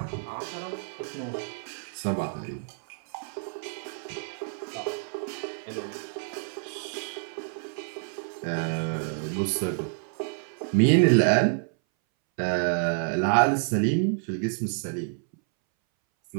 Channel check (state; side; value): silent; left; 59 dB below the other